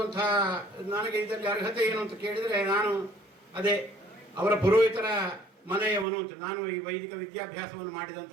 ನನಗೆ ಇದರಲ್ಲಿ ಅರ್ಹತೆ ಏನು ಅಂತ ಕೇಳಿದರೆ ನಾನು ಅದೇ ಅವರ ಪುರೋಹಿತರ ಮನೆಯವನು ಅಂತ. ನಾನು ಈ ವೈದಿಕ ವಿದ್ಯಾಭ್ಯಾಸವನ್ನು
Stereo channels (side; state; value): left; drops out; at 6.1 s